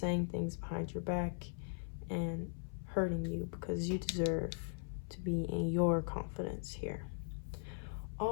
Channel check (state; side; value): silent; right; 51 dB below the other